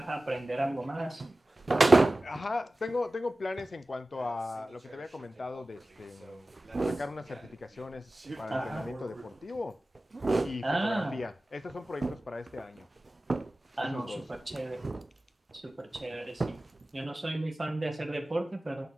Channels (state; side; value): normal; both; correlation 0.96